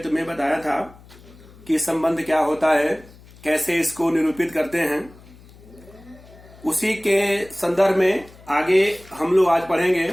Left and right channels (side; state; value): left; noise; hum, 23 dB below the sound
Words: तुम्हें बताया था कि संबंध क्या होता है, कैसे इसको निरूपित करते हैं। उसी के संदर्भ में आगे हम लोग आज पढ़ेंगे